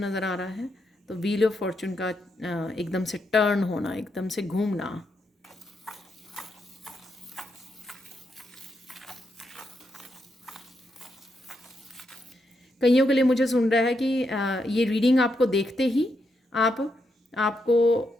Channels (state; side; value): normal; both; correlation 0.81